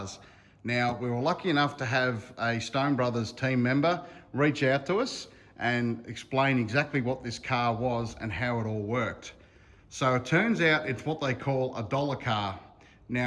Now, we were lucky enough to have a Stone Brothers team member reach out to us and explain exactly what this car was and how it all worked. So it turns out it's what they call a dollar car.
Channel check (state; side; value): identical; both; correlation 1.00